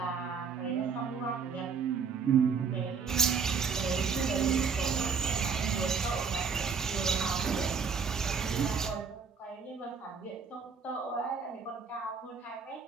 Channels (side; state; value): left; quieter; 5.8 dB